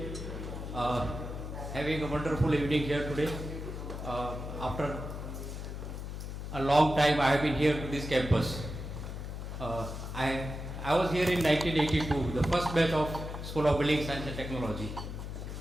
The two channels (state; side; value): noise; left; hum, 7 dB below the sound